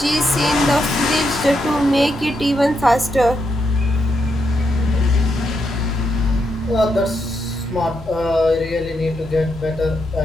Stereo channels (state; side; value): normal; both; correlation 0.81